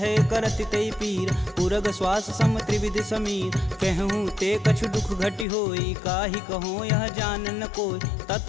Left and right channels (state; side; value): drops out; right; at 5.5 s